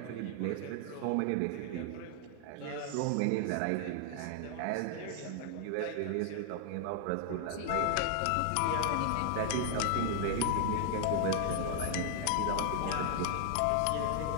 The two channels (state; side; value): different; both; correlation 0.00